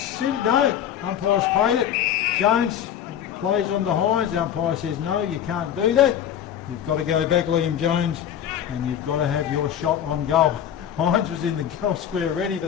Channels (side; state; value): right; quieter; 9.9 dB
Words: no. Umpire's paid it. Jones plays on the Hines. The umpire says no, you can't do that. You've got to go back, Liam Jones, and you've got to have your shot on goal. Hines was in the goal square ready for